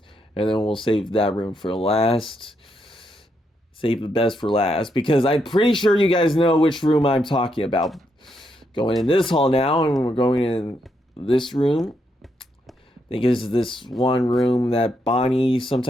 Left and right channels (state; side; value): normal; both; correlation 0.79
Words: then we'll save that room for last. Save the best for last, because I'm pretty sure you guys know which room I'm talking about. Going in this hall now, and we're going in this room. I think it's this one room that Bonnie